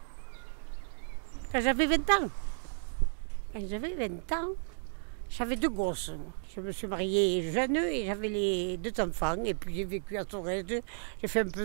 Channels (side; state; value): left; silent; digital silence